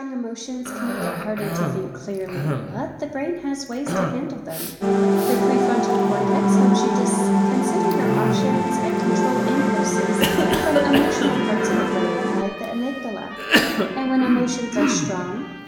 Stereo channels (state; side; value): identical; both; correlation 1.00